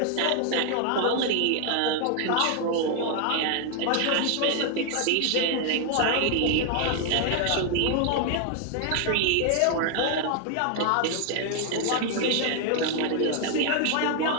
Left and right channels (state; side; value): different; both; correlation 0.00